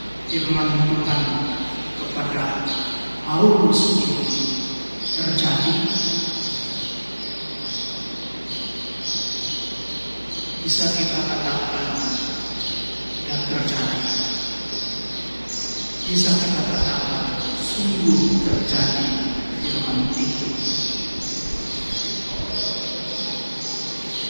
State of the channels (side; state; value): both; inverted; correlation -1.00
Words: firman Tuhan kepada Paulus ini terjadi? Bisa kita katakan tidak terjadi. Bisa kita katakan sungguh terjadi firman itu.